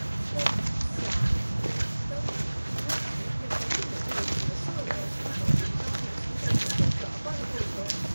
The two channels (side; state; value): both; inverted; correlation -1.00